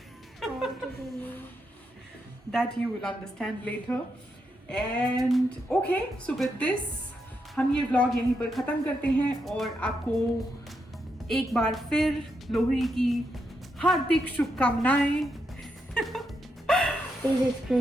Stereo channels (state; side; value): normal; both; correlation 0.82